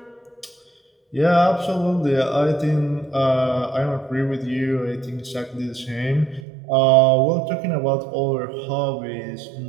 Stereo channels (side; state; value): left; drops out; at 6.5 s